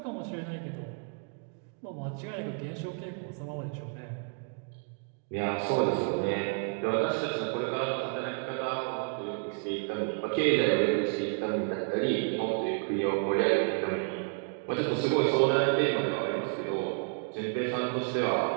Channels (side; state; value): left; quieter; 39.4 dB